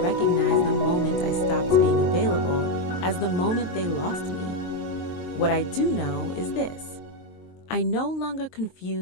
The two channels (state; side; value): late; right; 23 ms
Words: the moment I stopped being available as the moment they lost me. What I do know is this. I no longer